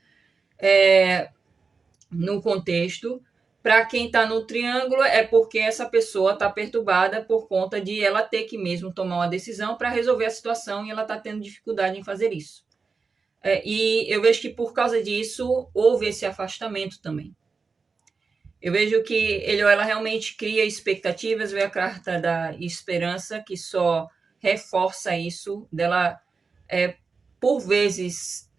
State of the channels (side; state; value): left; quieter; 4.7 dB